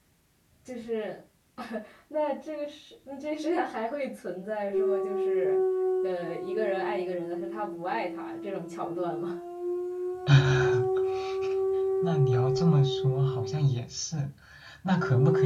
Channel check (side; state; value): both; identical; correlation 1.00